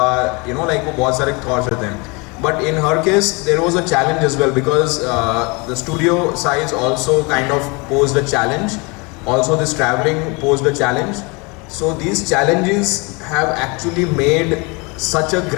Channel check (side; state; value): right; quieter; 28.6 dB